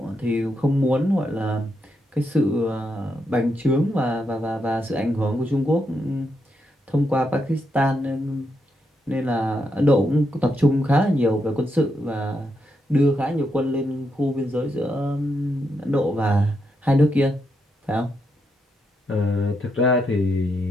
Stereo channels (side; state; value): both; normal; correlation 0.81